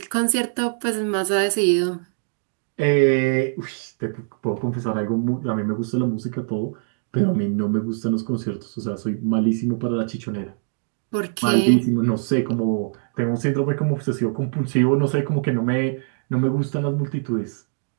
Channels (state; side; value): silent; left; digital silence